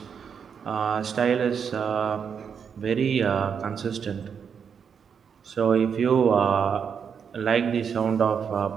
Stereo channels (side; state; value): left; quieter; 7.0 dB